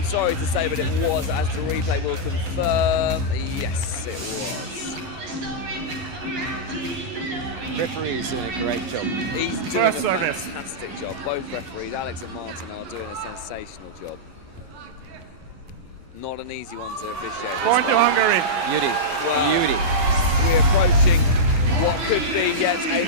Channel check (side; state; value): left; late; 11 ms